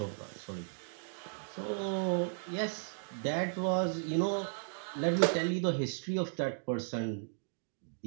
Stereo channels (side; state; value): left; silent; digital silence